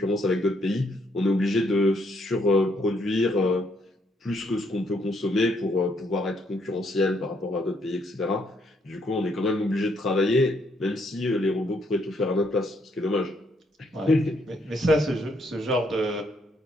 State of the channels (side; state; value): both; normal; correlation 0.72